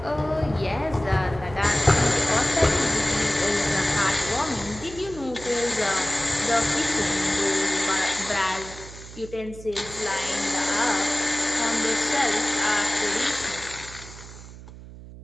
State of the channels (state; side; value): noise; right; hum, 16 dB below the sound